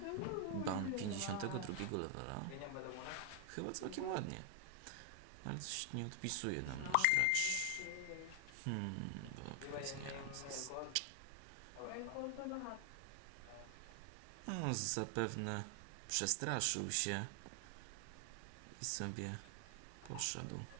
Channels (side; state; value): both; different; correlation 0.00